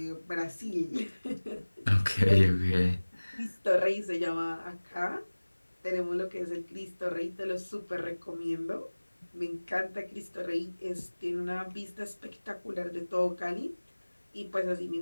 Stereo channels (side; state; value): both; inverted; correlation -1.00